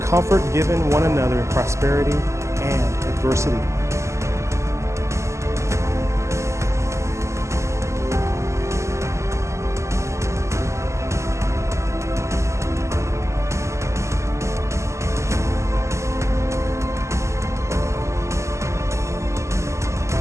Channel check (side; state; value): left; late; 0.14 ms